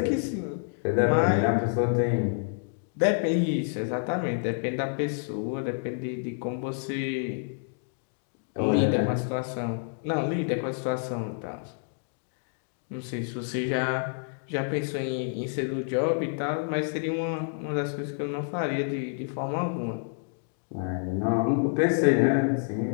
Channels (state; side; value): silent; right; digital silence